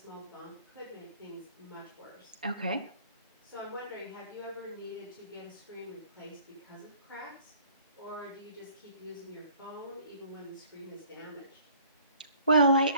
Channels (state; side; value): inverted; both; correlation -0.54